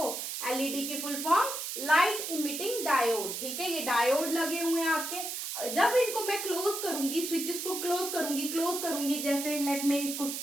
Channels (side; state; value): right; noise; hiss, 5 dB below the sound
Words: एलईडी की full form light emitting diode, ठीक है। ये डायोड लगे हुए हैं आपके, जब इनको मैं क्लोज करूंगी, स्विचेस को क्लोज करूंगी, जैसे लेट में इसको